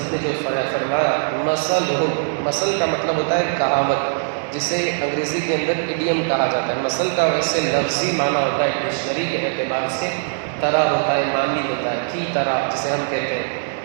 نے جو فرمایا، مثل کا مطلب ہوتا ہے کہاوت، جسے انگریزی کے اندر ایڈیم کہا جاتا ہے۔ مثل کا ویسے لفظی معنی ہوتا ہے ڈکشنری کے اعتبار سے، طرح ہوتا ہے، معنی ہوتا ہے، کی طرح جسے ہم کہتے ہیں،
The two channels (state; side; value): silent; left; digital silence